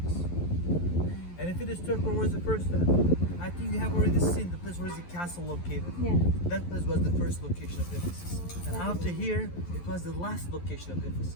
And if it is third, where was the first time? I think you have already seen the place where is the castle located. Yeah. That place was the first location of Ephesus. And after here, it was the last location of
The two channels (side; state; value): right; late; 11 ms